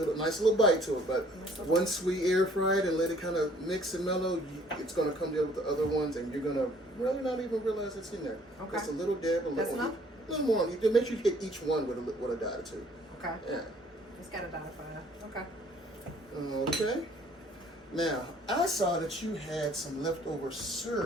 nice little bite to it, but once we air fry it and let it kind of mix and mellow, it's gonna come together with the other ones, and you're gonna really not even realize it's in there. Okay. Just a little dab, a little more. You make sure you hit each one with a dot or two. Okay. Yeah. It's got a dot of fire. Okay. Okay. Now I saw that you had some leftover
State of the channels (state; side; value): normal; both; correlation 0.58